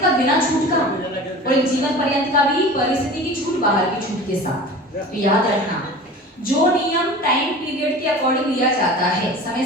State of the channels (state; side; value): normal; both; correlation 0.37